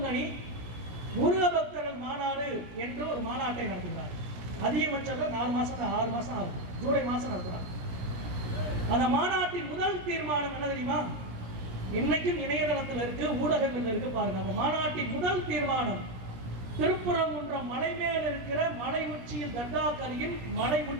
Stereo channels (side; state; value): left; late; 17 ms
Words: முருக பக்தர்கள் மாநாடு என்று ஒரு மாநாட்டை நடத்துகிறார். அதிகபட்சம் 4 மாசம் 6 மாசம் ஆகும். ஜூலை மாசம் நடத்துறாங்க. அந்த மாநாட்டின் முதல் தீர்மானம் என்ன தெரியுமா? இன்னைக்கும் இணையதளத்தில் இருக்கு, ஊடகங்கள் இருக்கு, பாருங்க. அந்த மாநாட்டின் முதல் தீர்மானம், திருப்பரங்குன்றம் மலை மேல் இருக்கிற மலை உச்சியில், தர்காக்கரையில் மலை